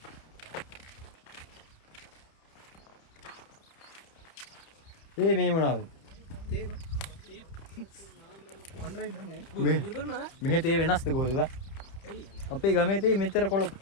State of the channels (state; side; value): late; right; 30 ms